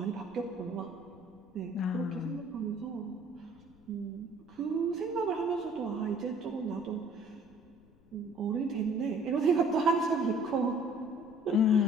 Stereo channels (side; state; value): left; noise; rumble, 27 dB below the sound